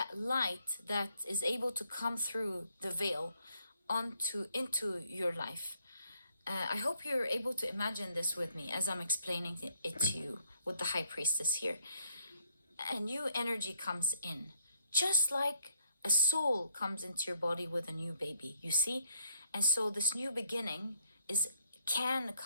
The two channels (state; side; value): inverted; both; correlation -0.68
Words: light that is able to come through the veil into your life. I hope you're able to imagine this with me as I'm explaining it to you with the High Priestess here. A new energy comes in, just like a soul comes into your body with a new baby, you see? And so this new beginning can